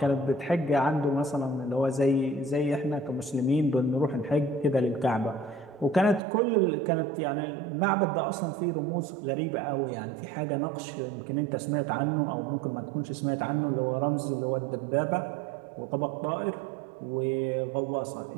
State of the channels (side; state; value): left; drops out; at 6.2 s